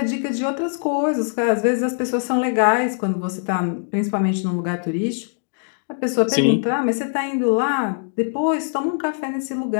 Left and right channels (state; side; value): silent; right; digital silence